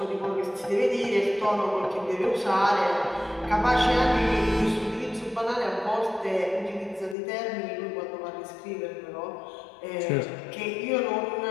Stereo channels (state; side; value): drops out; right; at 7.2 s